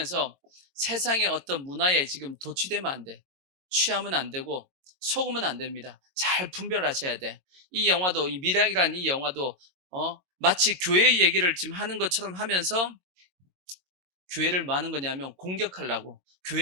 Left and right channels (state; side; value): late; left; 22 ms